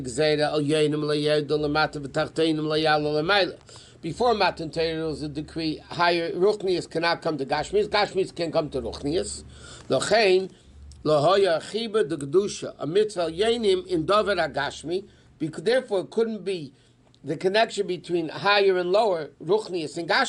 Gzeira al Yenim Layed Lamata V'Tachtenim Layal Lamayla. Before Matan Torah was a decree higher Ruchnius cannot come to Gashmius. Gashmius can come to Ruchnius. Lochein Lahoya Chiba de Gedusha a mitzvah Yenim in Dover Agashmi. Because therefore it couldn't be the connection between higher and lower Ruchnius and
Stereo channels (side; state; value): both; identical; correlation 1.00